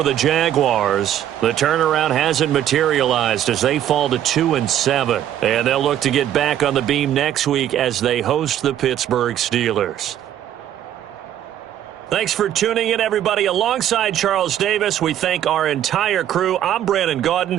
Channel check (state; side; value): quieter; left; 11.2 dB